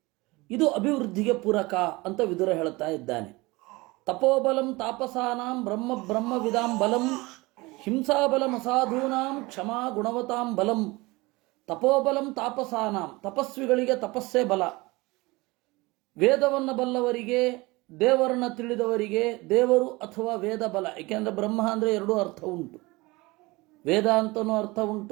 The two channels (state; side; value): quieter; left; 22.8 dB